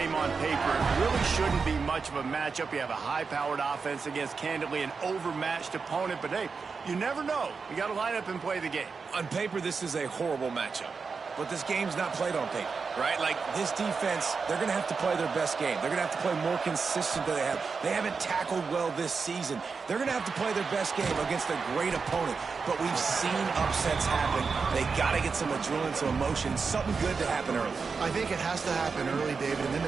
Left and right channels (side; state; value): left; quieter; 5.0 dB